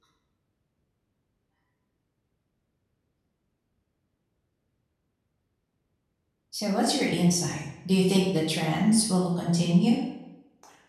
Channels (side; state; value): both; identical; correlation 1.00